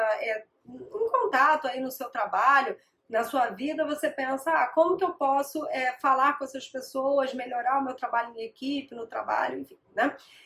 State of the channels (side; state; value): both; identical; correlation 1.00